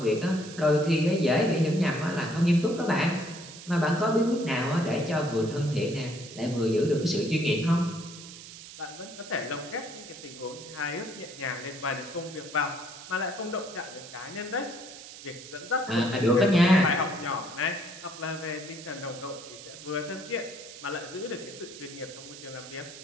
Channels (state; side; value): noise; right; hiss, 15 dB below the sound